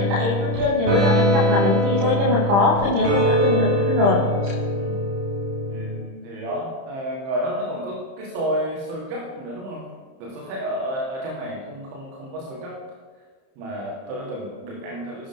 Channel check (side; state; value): left; late; 30 ms